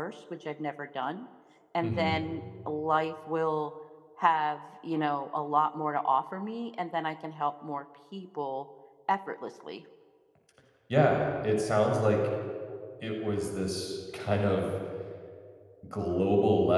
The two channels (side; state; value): both; identical; correlation 1.00